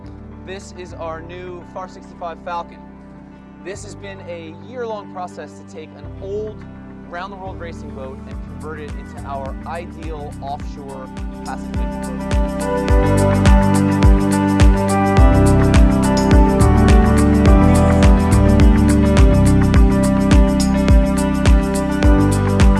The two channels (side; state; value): both; identical; correlation 1.00